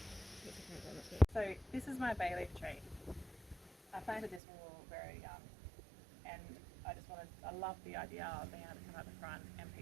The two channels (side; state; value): left; drops out; at 4.4 s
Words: So this is my bay leaf tree. I planted this when we were very young, and I love the idea of being able to come out the front and